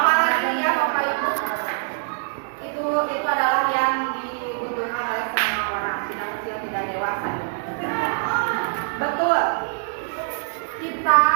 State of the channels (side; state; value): left; silent; digital silence